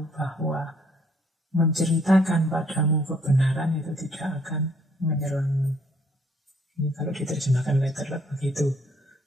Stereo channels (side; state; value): both; normal; correlation 0.65